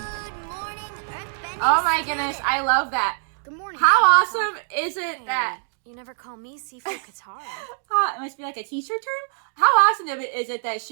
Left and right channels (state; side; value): silent; left; digital silence